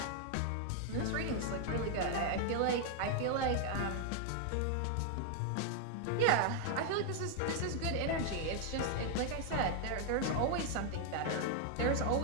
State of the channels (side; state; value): both; different; correlation 0.00